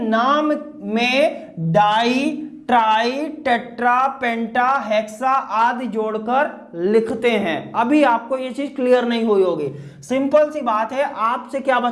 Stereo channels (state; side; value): identical; both; correlation 1.00